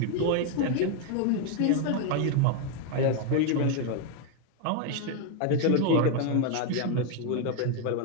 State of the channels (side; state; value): both; different; correlation 0.01